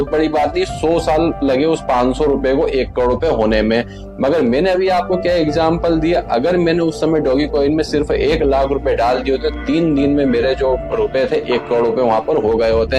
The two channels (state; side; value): identical; both; correlation 1.00